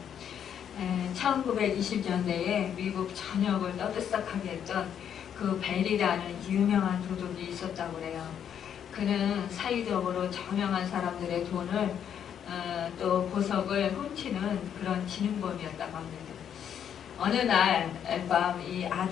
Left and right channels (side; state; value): right; quieter; 8.8 dB